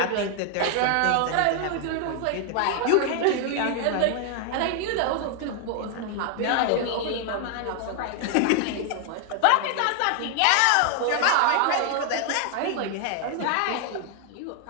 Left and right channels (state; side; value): different; both; correlation 0.00